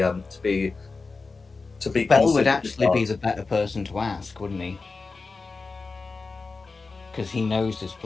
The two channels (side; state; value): right; quieter; 4.1 dB